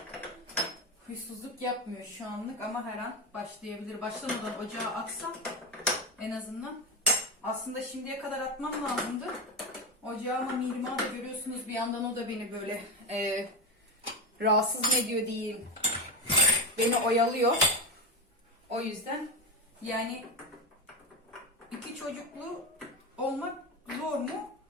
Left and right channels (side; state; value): both; normal; correlation 0.15